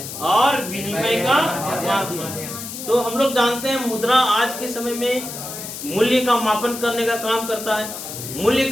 और विनिमय का माध्यम। तो हम लोग जानते हैं मुद्रा आज के समय में मूल्य का मापन करने का काम करता है। मूल्य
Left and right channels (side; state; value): left; noise; hiss, 9 dB below the sound